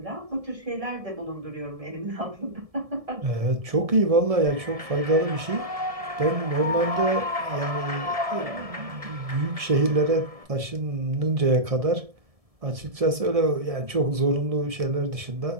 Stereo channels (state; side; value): late; left; 1.7 ms